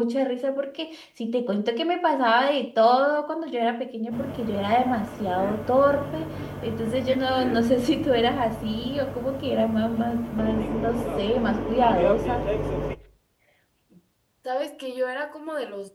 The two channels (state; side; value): identical; both; correlation 1.00